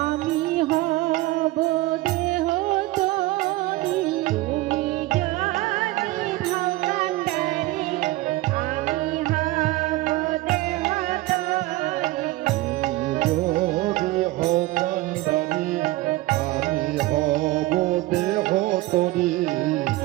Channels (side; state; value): left; quieter; 18.6 dB